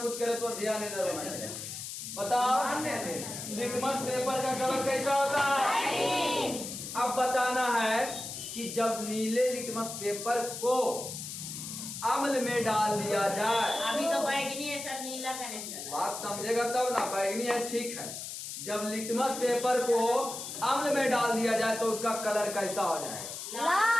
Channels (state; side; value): noise; left; hiss, 8 dB below the sound